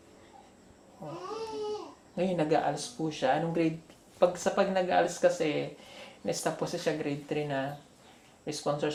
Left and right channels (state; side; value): identical; both; correlation 1.00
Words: Ngayon, nag-aals po siya. Anong grade? Pag nag-aals kasi, na-stop po siya grade 3 na. May sponsor